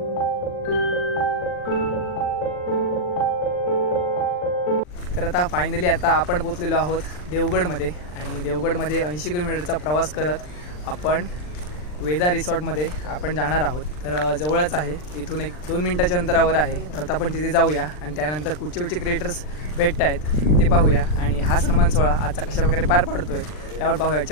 तर आता फायनली आता आपण पोचलेलो आहोत देवगडमध्ये. आणि देवगडमध्ये 80 किलोमीटरचा प्रवास करत आपण वेदा रिसॉर्टमध्ये आपण जाणार आहोत. तर जवळच आहे, इथून 1-2 मिनिटाच्या अंतरावर आहे. तर आपण तिथे जाऊया आणि त्यानंतर कुठचे क्रिएटर्स भेटत आहेत ते पाहूया. आणि हा सन्मान सोहळा आजचा कशाप्रकारे पार पाडतोय त्यावर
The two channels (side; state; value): right; late; 40 ms